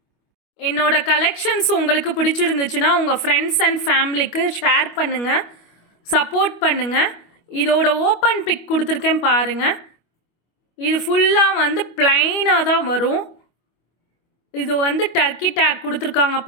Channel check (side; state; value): right; late; 25 ms